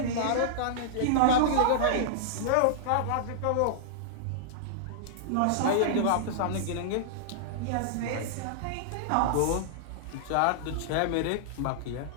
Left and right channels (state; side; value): different; both; correlation -0.02